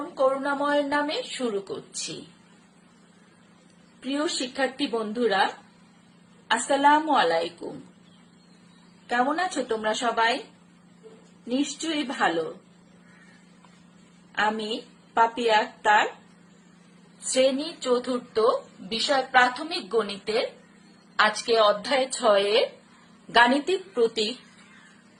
করুণাময়ের নামে শুরু করছি। প্রিয় শিক্ষার্থী বন্ধুরা, আসসালামু আলাইকুম। কেমন আছো তোমরা সবাই? নিশ্চয়ই ভালো। আমি পাপিয়া আক্তার, শ্রেণী ৪র্থ, বিষয় প্রাথমিক গণিতের আজকে অধ্যায় 6-এর গাণিতিক প্রতীক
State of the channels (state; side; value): identical; both; correlation 1.00